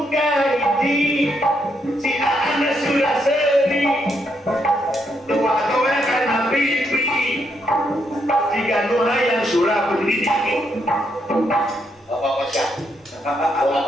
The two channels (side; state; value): both; normal; correlation 0.77